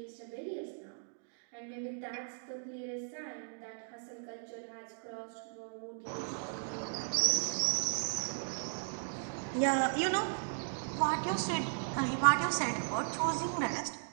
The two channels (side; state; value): left; silent; digital silence